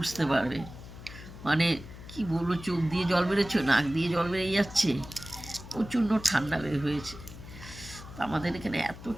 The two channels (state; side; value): noise; left; hum, 14 dB below the sound